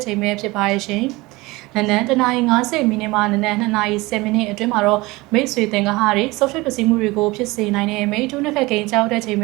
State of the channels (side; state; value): left; quieter; 21.9 dB